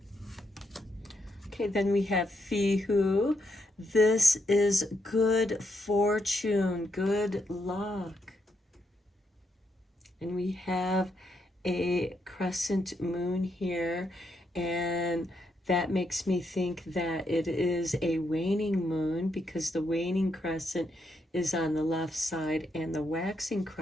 Okay, then we have Fihu. This is good fortune, good luck. And we have a crescent moon here, and that makes me think that it is a waning moon, because the waning crescent is on the left side and the waxing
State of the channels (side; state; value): both; normal; correlation 0.79